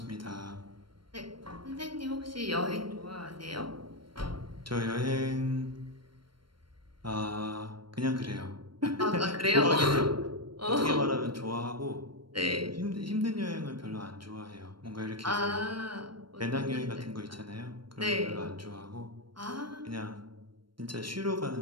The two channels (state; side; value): late; left; 0.72 ms